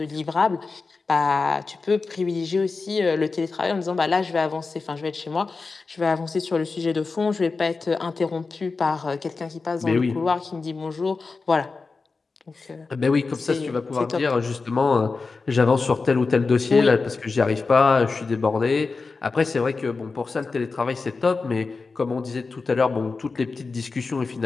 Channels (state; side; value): quieter; right; 4.2 dB